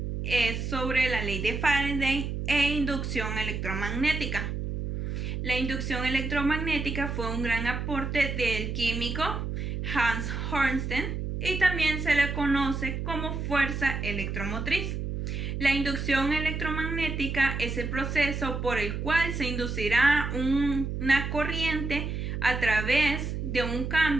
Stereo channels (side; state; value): right; noise; hum, 3 dB below the sound